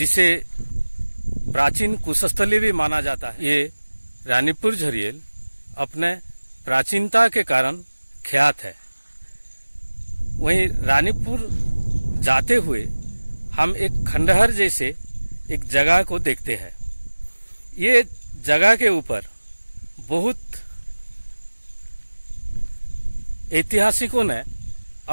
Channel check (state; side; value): inverted; both; correlation -1.00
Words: प्राचीन कुशस्थली भी माना जाता है, ये रानीपुर झरियल अपने प्राचीनता के कारण ख्यात है। वहीं रानीपुर जाते हुए हम एक खंडहर जैसे एक जगह को देखते हैं। ये जगह के ऊपर बहुत ऐतिहासिकों ने